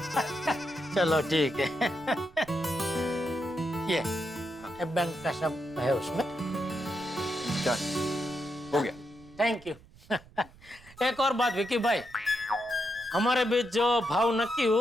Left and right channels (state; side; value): noise; right; rumble, 24 dB below the sound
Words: चलो ठीक है। ये बैंक का सब है उसमें। चल, हो गया। Thank you. एक और बात विकी भाई, हमारे बीच जो भाव नक्की